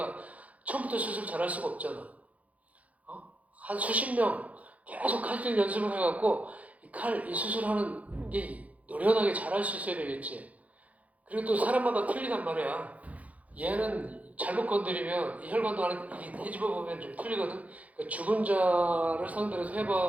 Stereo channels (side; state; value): left; late; 0.070 ms